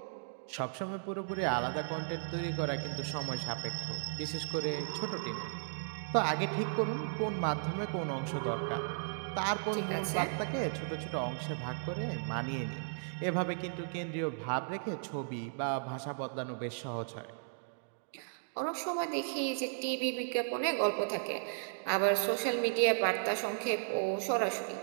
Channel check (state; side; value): silent; left; digital silence